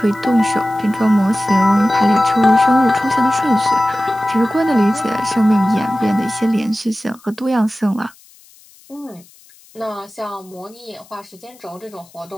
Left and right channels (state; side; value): noise; left; hiss, 27 dB below the sound